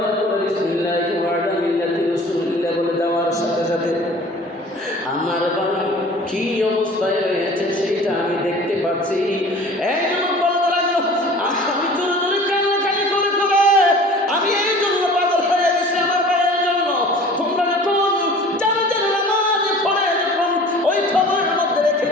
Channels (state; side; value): normal; both; correlation 0.45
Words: পরে বিসমিল্লাহি ওয়া আলা মিল্লাতি রাসূলিল্লাহ বলে দেওয়ার সাথে সাথে আমার বাড়ি কি অবস্থায় রয়েছে সেইটা আমি দেখতে পাচ্ছি। এই যুবক বলতে লাগলো, আমি জোরে জোরে কান্নাকাটি করে করে আমি এই জন্য পাগল হয়ে গেছি আমার ভাইয়ের জন্য। তোমরা যখন জানাজার নামাজ পড়ে যখন ওই খবরের মধ্যে রেখে